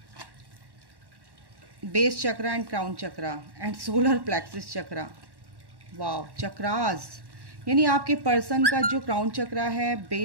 Base chakra and crown chakra and solar plexus chakra. Wow, chakras यानी आपके पर्सन का जो क्राउन चक्रा है,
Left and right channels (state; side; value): late; left; 1.1 ms